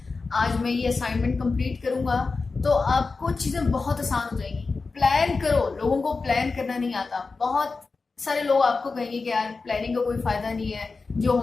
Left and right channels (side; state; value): right; quieter; 4.2 dB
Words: आज मैं ये असाइनमेंट कंप्लीट करूंगा, तो आपको चीज़ें बहुत आसान हो जाएंगी। प्लान करो। लोगों को प्लान करना नहीं आता। बहुत सारे लोग आपको कहेंगे कि यार प्लानिंग का कोई फायदा नहीं है, जो